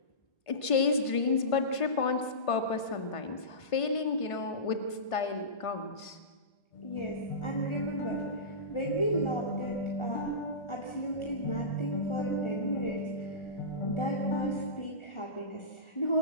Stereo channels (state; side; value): late; right; 1.5 ms